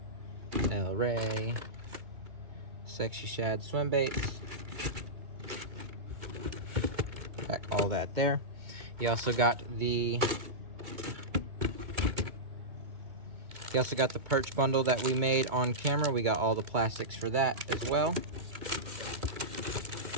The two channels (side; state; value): left; late; 2.2 ms